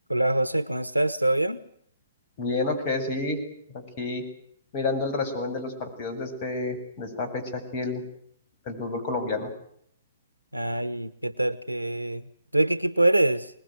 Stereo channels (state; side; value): inverted; both; correlation -0.72